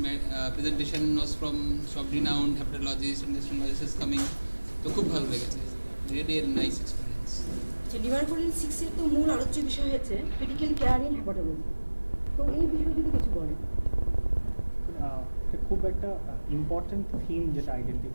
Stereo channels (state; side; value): inverted; both; correlation -1.00